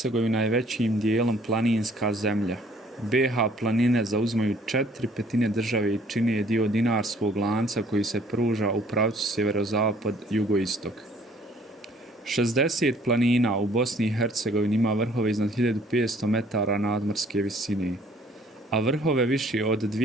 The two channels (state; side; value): normal; both; correlation 0.58